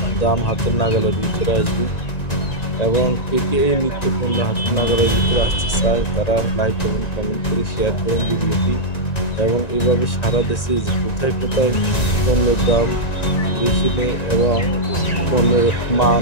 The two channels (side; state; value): right; late; 1.9 ms